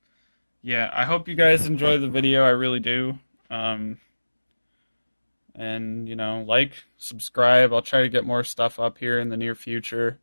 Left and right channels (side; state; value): both; inverted; correlation -1.00